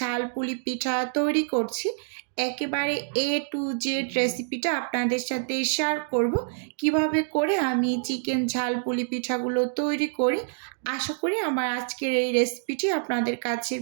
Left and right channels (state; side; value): silent; left; digital silence